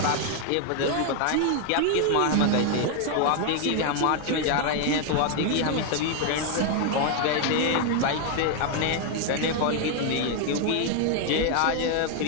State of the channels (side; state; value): both; different; correlation 0.01